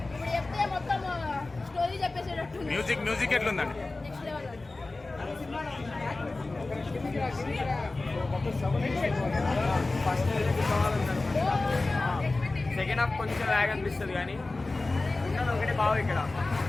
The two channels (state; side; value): quieter; right; 3.2 dB